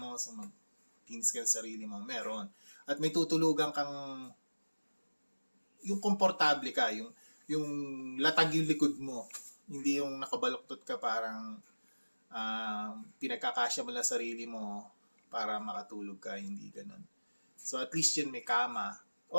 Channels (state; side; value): inverted; both; correlation -1.00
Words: so mag-things ka sa sarili mo, meron. At may tutulugan kang, yung komportable ka, yung latag yung likod mo, hindi yung nakabaluktot ka parang pinagkakasya mo lang sarili mo para makatulog ka, hindi ganun. So at least yun may kama.